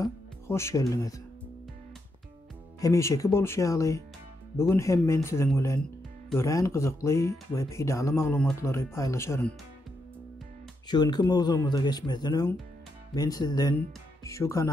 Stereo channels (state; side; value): normal; both; correlation 0.81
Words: hoş geldiňiz. Hemişeki bolşýaly, bugün hem men siziň bilen görän gyzykly we peýdaly maglumatlary paýlaşaryn. Şuňky mowzumuza geçmezden öň men sizden şu